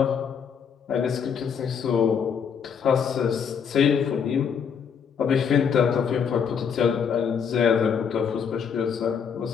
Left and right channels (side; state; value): right; quieter; 7.0 dB